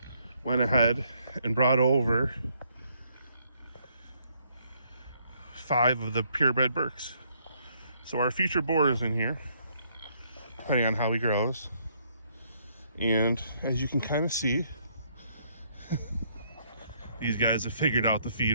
went ahead and brought over 5 of the purebred berks. So our future boar is in here, depending on how he grows. And as you can kind of see, these guys have figured out the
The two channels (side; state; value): both; inverted; correlation -0.70